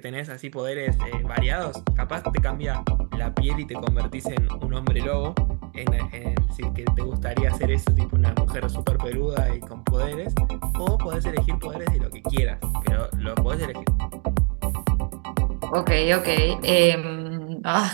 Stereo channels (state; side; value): quieter; left; 35.3 dB